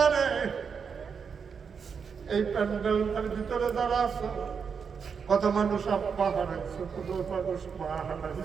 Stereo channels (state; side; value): quieter; left; 6.2 dB